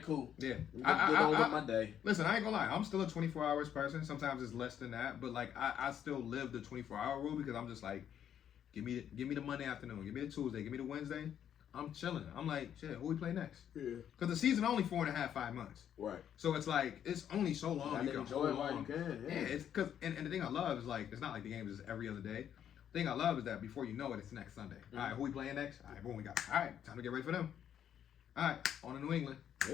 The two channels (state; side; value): quieter; right; 9.5 dB